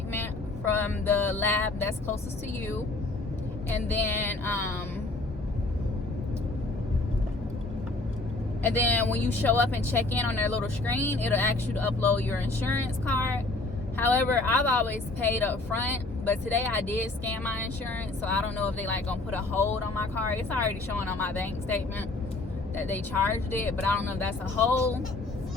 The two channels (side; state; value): right; quieter; 3.1 dB